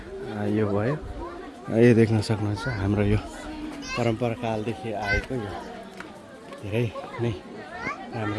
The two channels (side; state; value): both; identical; correlation 1.00